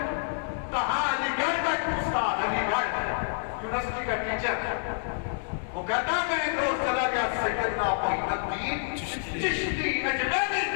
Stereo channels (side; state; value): right; silent; digital silence